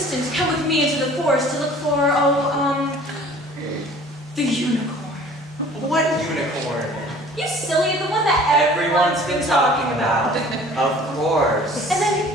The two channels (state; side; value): normal; both; correlation 0.49